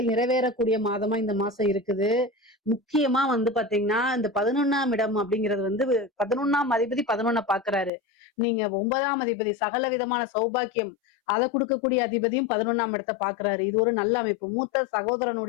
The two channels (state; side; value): drops out; right; at 7.9 s